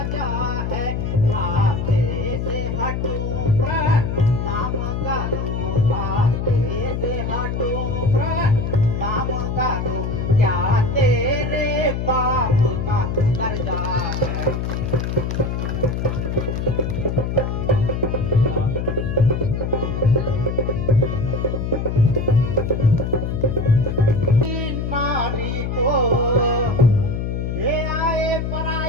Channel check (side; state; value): left; noise; hum, 2 dB below the sound